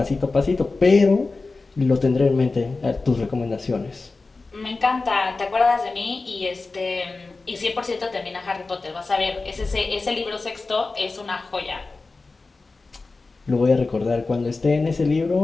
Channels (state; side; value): quieter; right; 3.7 dB